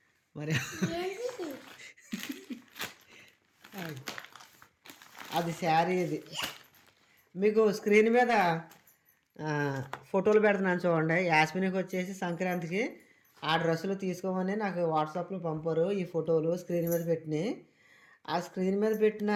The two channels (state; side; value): identical; both; correlation 1.00